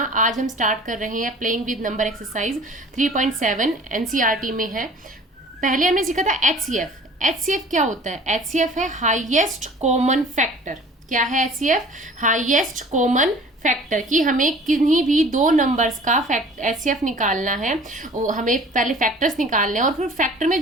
आज हम स्टार्ट कर रहे हैं playing with number exercise 3.7 NCERT में है। पहले हमने सीखा था एचसीएफ। एचसीएफ क्या होता है? एचसीएफ है हाईएस्ट कॉमन फैक्टर। क्या है एचसीएफ? Highest common factor. कि हमें किन्हीं भी दो नंबर्स का एचसीएफ निकालना है, हमें पहले फैक्टर्स निकालने हैं और फिर फैक्टर में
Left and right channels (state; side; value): normal; both; correlation 0.47